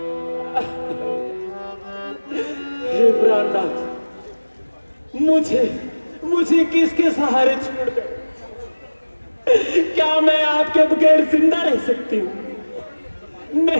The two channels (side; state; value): both; inverted; correlation -1.00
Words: हे प्राणनाथ, मुझे किसके सहारे छोड़ गए? क्या मैं आपके बगैर जिंदा रह सकती हूँ?